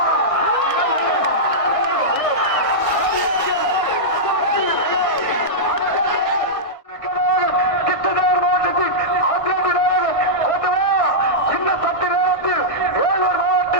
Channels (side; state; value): right; late; 1.6 ms